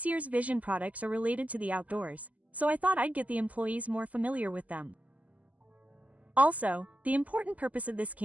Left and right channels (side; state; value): left; late; 0.074 ms